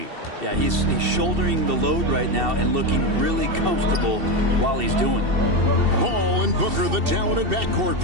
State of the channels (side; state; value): left; late; 2.7 ms